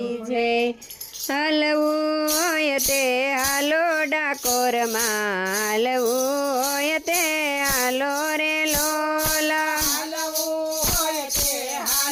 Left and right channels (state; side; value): identical; both; correlation 1.00